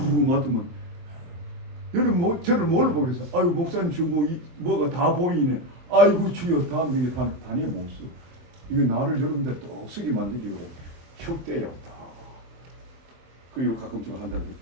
맡으면 여러분 저를 뭘 보겠어요? 아이고 목사님 저 뭐가 다 보이네. 아이고 주여 다음 명에 단에 못 써. 이거 나를 여러분들 떡쓰게 만들기로 혁대야 다. 그리고 가끔 좀 한다고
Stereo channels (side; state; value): left; late; 23 ms